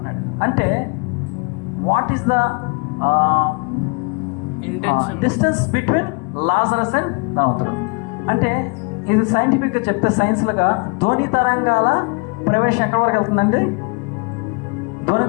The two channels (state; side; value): quieter; right; 31.8 dB